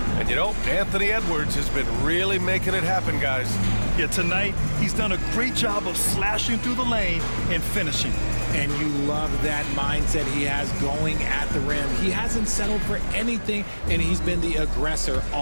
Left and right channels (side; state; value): both; inverted; correlation -1.00